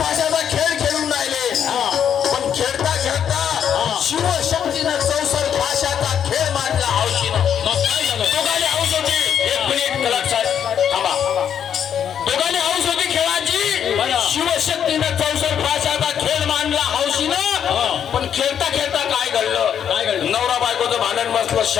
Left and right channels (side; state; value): right; quieter; 8.7 dB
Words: खेळ खेळून राहिले. पण खेळता खेळता शिवशक्तीनं चौसर भाषाचा खेळ मांडला हौशीनं. दोघांनी हौस होती. एक मिनिट लक्षात थांबा. दोघांनी हौस होती खेळाची. शिवशक्तीनं चौसर भाषाचा खेळ मांडला हौशीनं. पण खेळता खेळता काय घडलं. नवरा बायकोचं भांडण बसलं.